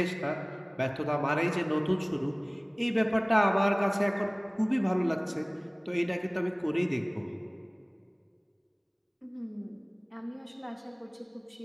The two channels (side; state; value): both; identical; correlation 1.00